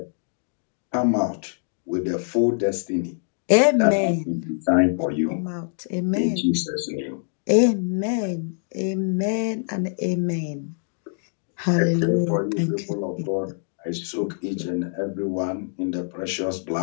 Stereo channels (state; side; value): silent; right; digital silence